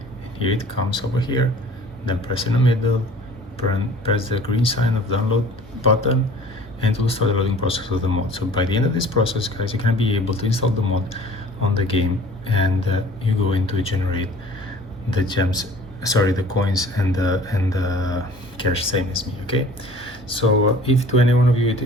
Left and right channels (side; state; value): both; normal; correlation 0.48